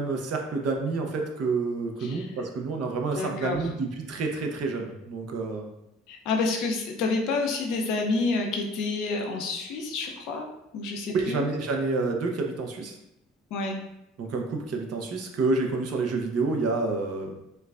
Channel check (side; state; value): both; normal; correlation 0.48